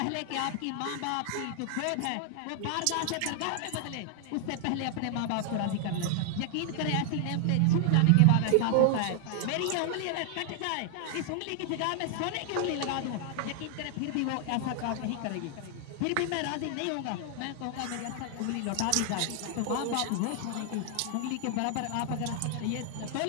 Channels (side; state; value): both; different; correlation 0.00